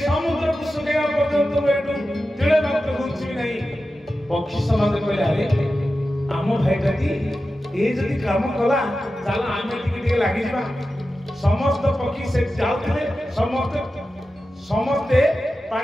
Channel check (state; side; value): normal; both; correlation 0.93